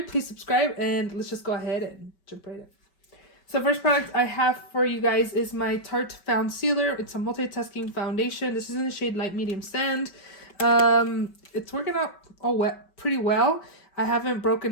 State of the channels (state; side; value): late; right; 5.2 ms